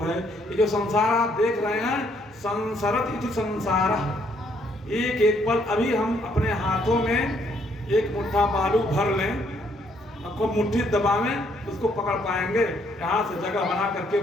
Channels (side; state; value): both; normal; correlation 0.69